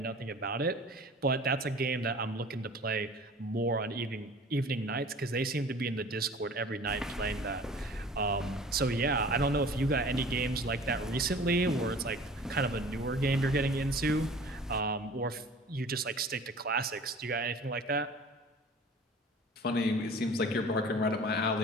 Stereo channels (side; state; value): both; normal; correlation 0.44